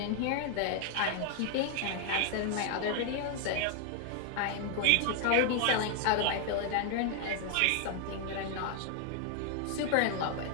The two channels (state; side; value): different; both; correlation 0.00